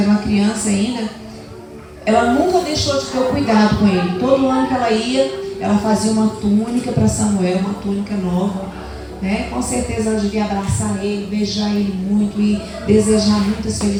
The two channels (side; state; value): both; identical; correlation 1.00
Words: uma criança ainda, ela nunca deixou de ter o cuidado com ele. Todo ano que ela ia, ela fazia uma túnica para Samuel, uma túnica nova. Com certeza ela devia abraçar ele, beijar ele muito e desejar muitas